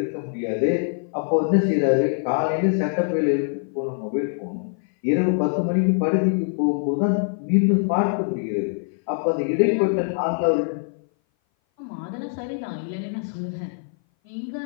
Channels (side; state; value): right; silent; 58 dB below the other